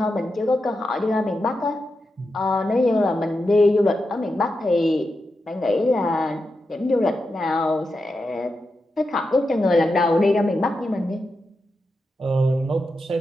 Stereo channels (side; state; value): both; normal; correlation 0.88